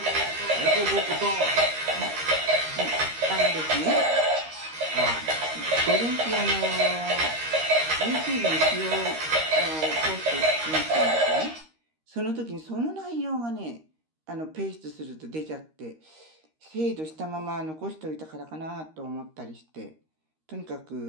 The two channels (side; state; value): left; late; 13 ms